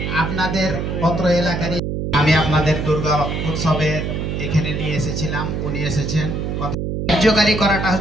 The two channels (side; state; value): right; noise; hum, 2 dB below the sound